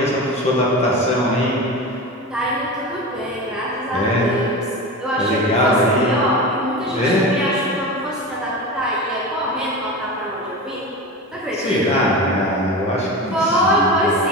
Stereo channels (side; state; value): both; normal; correlation 0.27